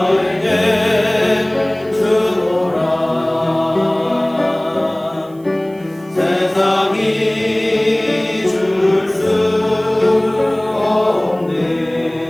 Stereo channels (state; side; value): noise; right; hiss, 29 dB below the sound